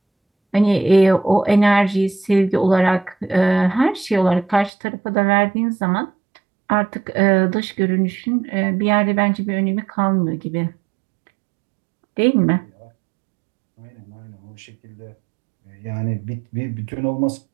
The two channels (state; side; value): drops out; left; at 4.7 s